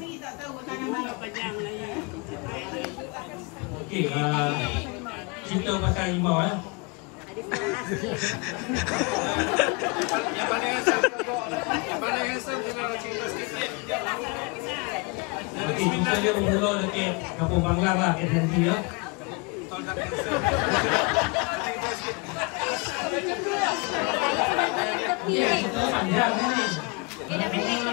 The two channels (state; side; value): quieter; right; 29.5 dB